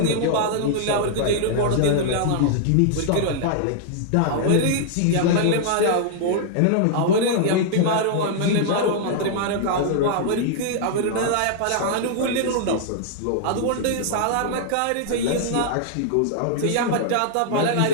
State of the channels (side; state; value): both; different; correlation -0.01